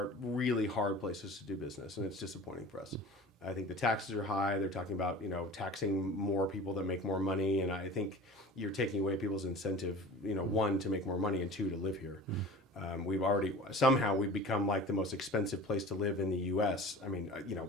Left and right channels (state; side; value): normal; both; correlation 0.39